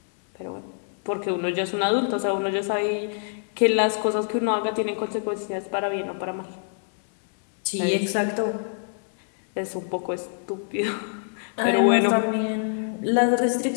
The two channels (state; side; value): silent; right; 62 dB below the other